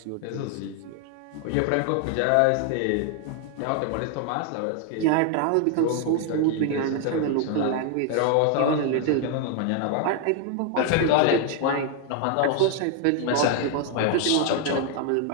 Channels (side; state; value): both; different; correlation 0.00